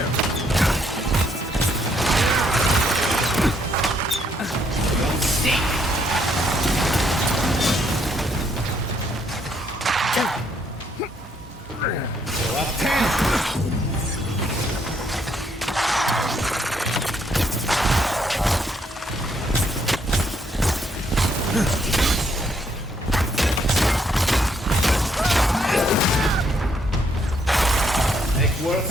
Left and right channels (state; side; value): normal; both; correlation 0.71